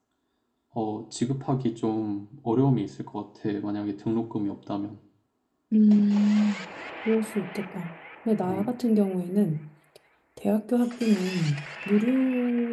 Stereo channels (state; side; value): identical; both; correlation 1.00